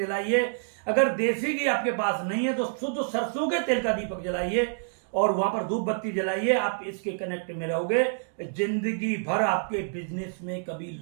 अगर देसी घी आपके पास नहीं है तो शुद्ध सरसों के तेल का दीपक जलाइए, और वहां पर धूप बत्ती जलाइए। आप इसके कनेक्ट में रहोगे, जिंदगी भर आपके बिजनेस में कभी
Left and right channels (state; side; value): silent; left; digital silence